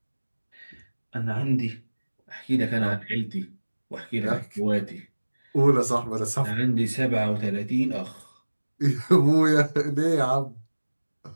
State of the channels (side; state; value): both; inverted; correlation -1.00